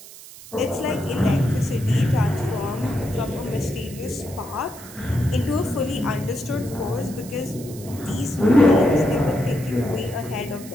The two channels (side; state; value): right; noise; hiss, 17 dB below the sound